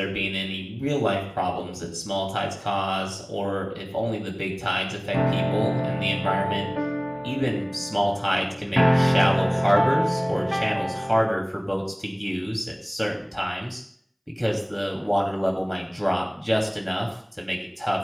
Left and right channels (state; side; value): identical; both; correlation 1.00